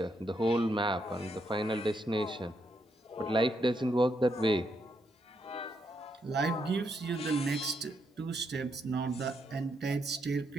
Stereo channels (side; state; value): both; normal; correlation 0.78